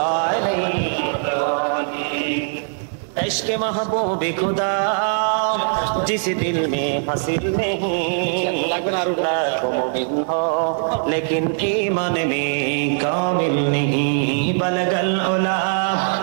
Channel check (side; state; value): left; silent; digital silence